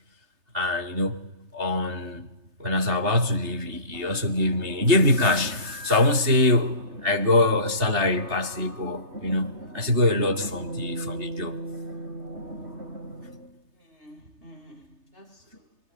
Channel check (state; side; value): late; left; 3.3 ms